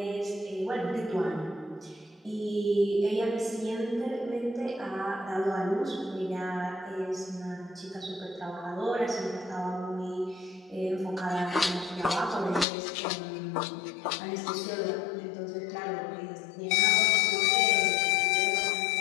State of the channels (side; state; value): right; drops out; at 12.7 s